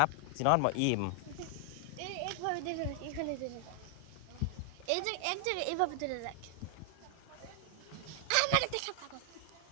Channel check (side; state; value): both; different; correlation 0.00